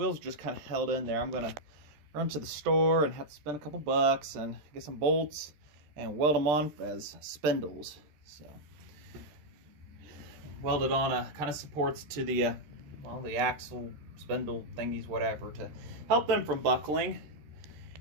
are just kind of held in there. I'm going to run to the store and have to spend a couple bucks and get some bolts and weld them on as spindles. So, welded on a kind of supports to the, well, the axle, spindle thingies, whatever, to help them from buckling.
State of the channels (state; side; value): late; left; 13 ms